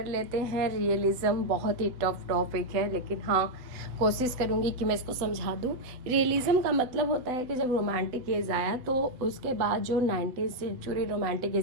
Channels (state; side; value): late; left; 8.0 ms